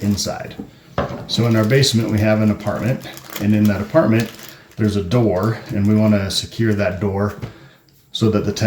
inside. So in our basement we have an apartment, and in that apartment there's a door, and we want to secure that door so that the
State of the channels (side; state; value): both; identical; correlation 1.00